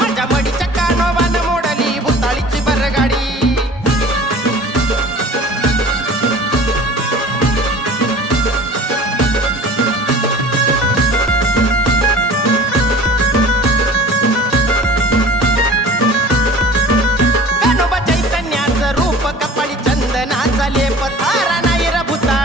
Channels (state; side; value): normal; both; correlation 0.43